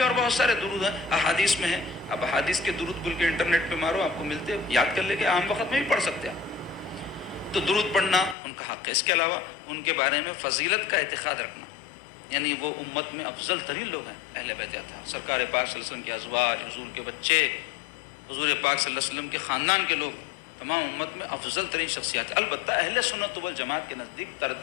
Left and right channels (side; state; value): right; drops out; at 8.3 s